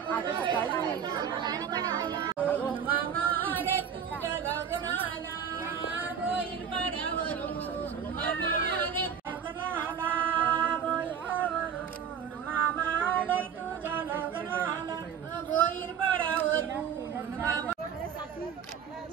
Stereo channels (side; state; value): left; quieter; 7.7 dB